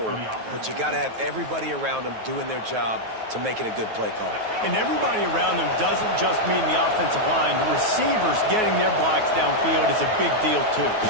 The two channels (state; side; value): late; left; 9.3 ms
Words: but you got to have everybody around them doing their job to make it a good play call. And everybody around them doesn't just mean the offensive line. The receivers getting their blocks downfield is a big deal, too.